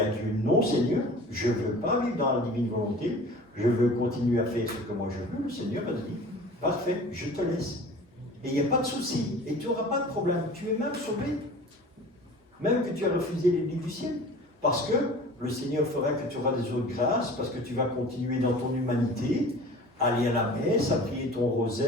Dieu, non Seigneur, je ne veux pas vivre dans la divine volonté, je veux continuer à faire ce que moi je veux, le Seigneur va te dire, parfait, je te laisse. Et il n'y a pas de souci, et tu n'auras pas de problème. Tu es même sauvé. Même que tu as refusé les livres du ciel. Parce que le Seigneur fera que tu auras des autres grâces, parce que tu vas continuer dans ton humanité, à aller à la messe, à prier ton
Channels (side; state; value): both; normal; correlation 0.42